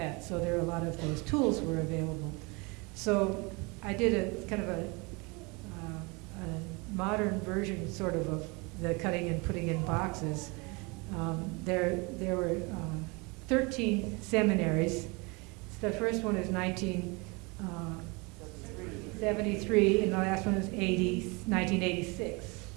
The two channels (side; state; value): left; quieter; 28.1 dB